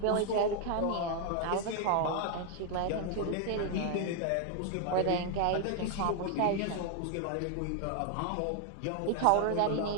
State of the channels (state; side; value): different; both; correlation 0.00